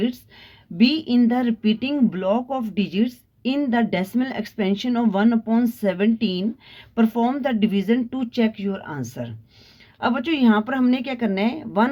be in the repeating block of digits in the decimal expansion of 1/17? perform the division to check your answer। अब बच्चों यहाँ पर हमने क्या करना है,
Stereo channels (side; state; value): both; identical; correlation 1.00